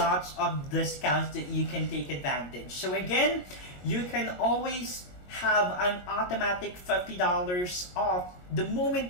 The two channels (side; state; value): right; late; 21 ms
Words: of discounts that you can take advantage. So again, you can always have an automatic $50 off the